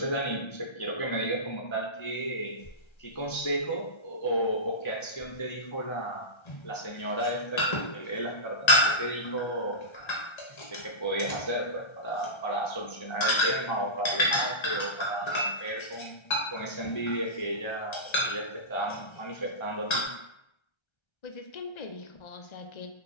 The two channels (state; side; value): late; right; 1.3 ms